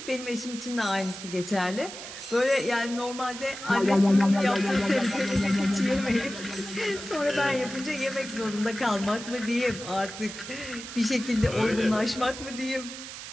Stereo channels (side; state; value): right; noise; hiss, 11 dB below the sound